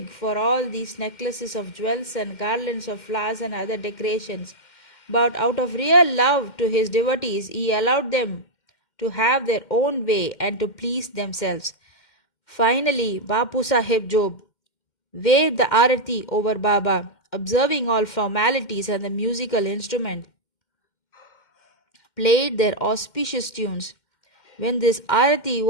for all these necklaces of jewels and garlands of flowers and other decorations. But out of real love to his devotees, he allowed them to have their own way and to please themselves. Finally, Bapu Sahib Job waved the arati over Baba, observing all formalities, and the musical instrument played their auspicious tunes. When this arati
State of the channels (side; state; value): right; late; 2.1 ms